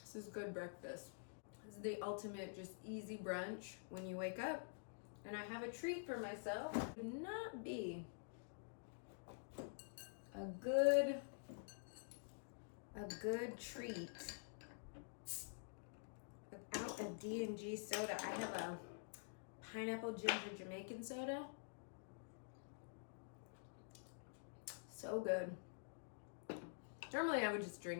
is good breakfast. This is the ultimate just easy brunch when you wake up. And I have a treat for myself. It would not be a good treat without a D&G soda. I have a pineapple ginger Jamaican soda. So good. Normally I would just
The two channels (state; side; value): silent; right; digital silence